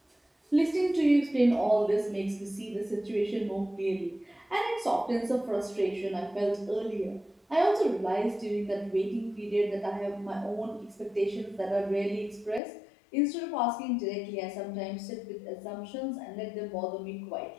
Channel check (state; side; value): drops out; right; at 12.6 s